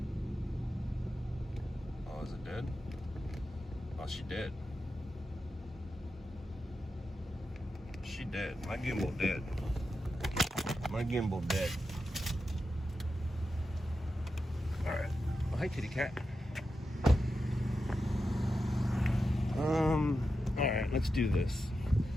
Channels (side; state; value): both; normal; correlation 0.89